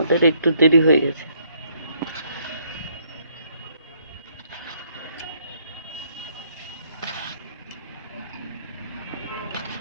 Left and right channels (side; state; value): both; inverted; correlation -0.68